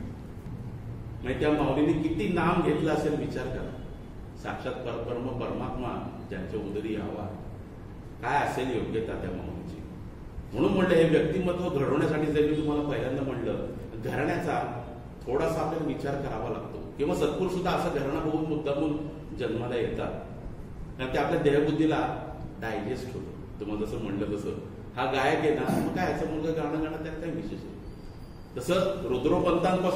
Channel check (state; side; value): identical; both; correlation 1.00